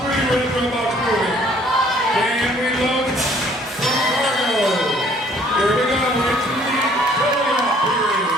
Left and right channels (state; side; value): normal; both; correlation 0.59